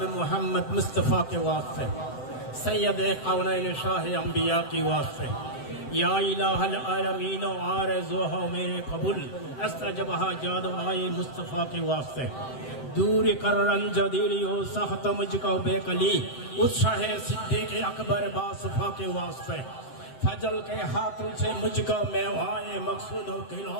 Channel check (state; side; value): late; right; 7.8 ms